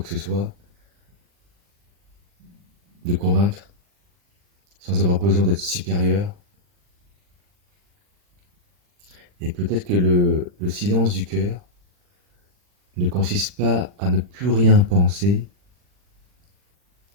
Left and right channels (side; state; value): left; late; 40 ms